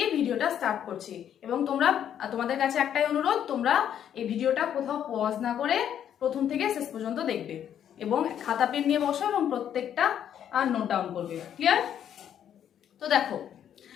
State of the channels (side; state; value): right; quieter; 9.6 dB